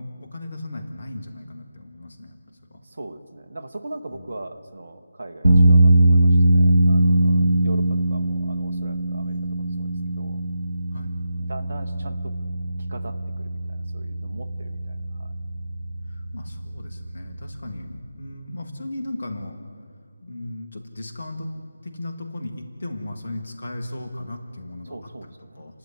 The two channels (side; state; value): both; inverted; correlation -0.89